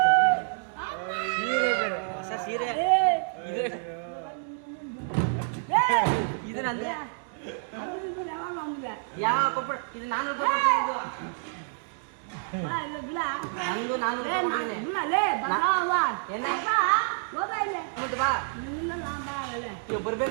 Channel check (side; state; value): left; silent; digital silence